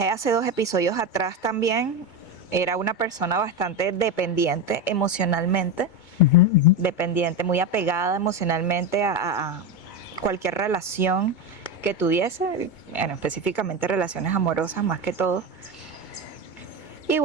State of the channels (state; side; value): late; right; 2.2 ms